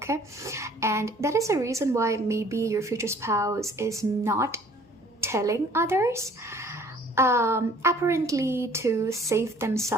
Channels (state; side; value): normal; both; correlation 0.55